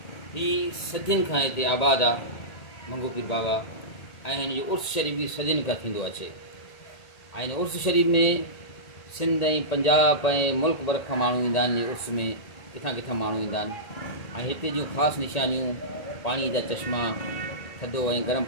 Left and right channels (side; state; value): right; late; 1.9 ms